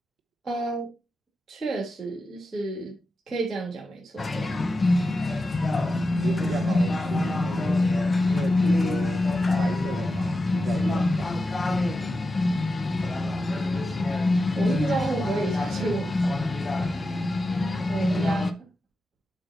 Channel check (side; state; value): both; normal; correlation 0.90